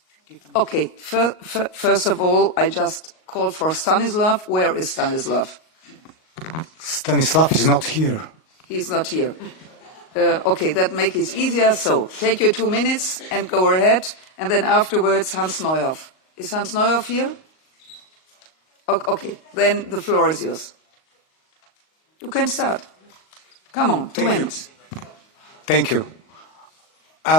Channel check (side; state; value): right; late; 38 ms